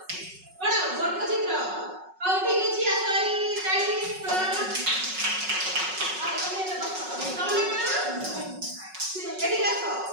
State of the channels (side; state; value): left; late; 5.4 ms